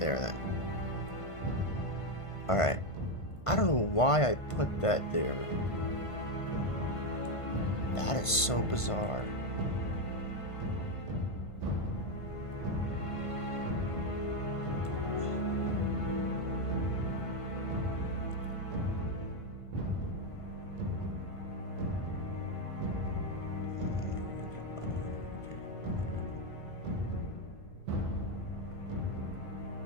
then. All right. I don't know why I put that there. That is so bizarre.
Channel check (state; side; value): late; right; 1.5 ms